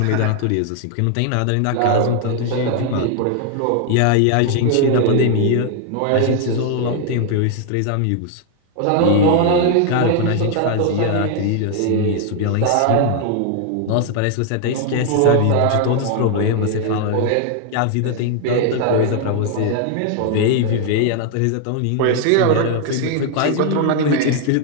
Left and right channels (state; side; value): different; both; correlation 0.00